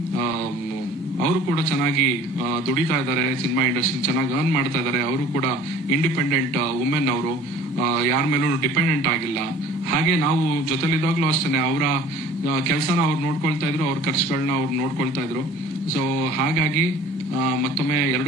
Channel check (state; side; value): normal; both; correlation 0.48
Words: ಕೂಡ ಚೆನ್ನಾಗಿ ದುಡಿತಾ ಇದ್ದಾರೆ, ಸಿನಿಮಾ ಇಂಡಸ್ಟ್ರಿ ಚೆನ್ನಾಗಿ ಅರ್ನ್ ಮಾಡ್ತಾ ಇದ್ದಾರೆ. ಅವರು ಕೂಡ ಇಂಡಿಪೆಂಡೆಂಟ್ ವುಮೆನ್. ಅವರು ಯಾರ ಮೇಲೂ ಡಿಪೆಂಡೆಂಟ್ ಆಗಿಲ್ಲ. ಹಾಗೆ ನಾವು ಜೊತೆಲಿದ್ದಾಗ್ಲೂ ಅಷ್ಟೇ ಅವರ ಕೆಲಸನ ಅವ್ರು ನೋಡ್ಕೊಳ್ತಾ ಇದ್ರು, ಅವ್ರ ಖರ್ಚುಗಳನ್ನ ಅವ್ರು ನೋಡ್ಕೊಳ್ತಾ ಇದ್ರು. ಸೊ ಹಾಗಾಗಿ ಮತ್ತೊಮ್ಮೆ